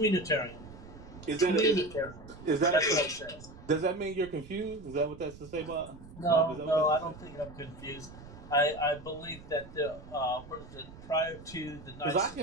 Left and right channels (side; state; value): right; noise; rumble, 17 dB below the sound